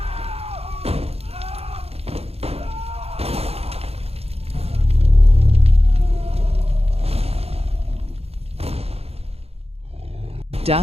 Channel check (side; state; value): left; late; 0.29 ms